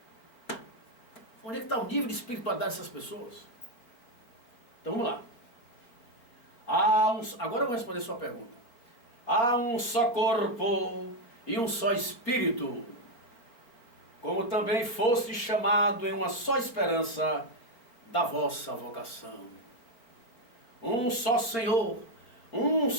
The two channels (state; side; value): late; right; 4.3 ms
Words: Onde é que está o nível de espiritualidade dessas pessoas? Então vamos lá. Agora eu vou responder a sua pergunta. Há um só corpo e um só espírito, como também foste chamado em uma só esperança da vossa vocação. Um só Senhor, uma